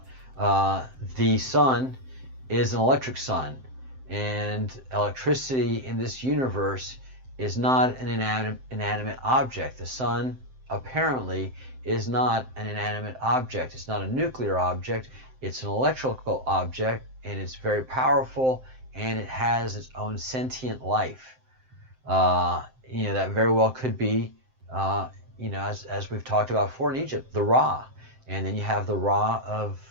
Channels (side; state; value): left; late; 7.7 ms